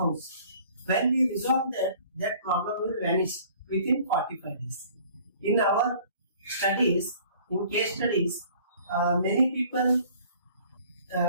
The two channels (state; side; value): inverted; both; correlation -0.52